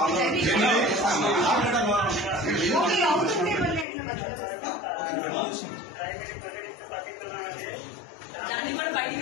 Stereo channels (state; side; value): drops out; right; at 3.9 s